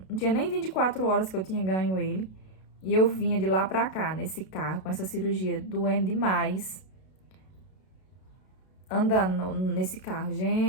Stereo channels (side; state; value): right; late; 32 ms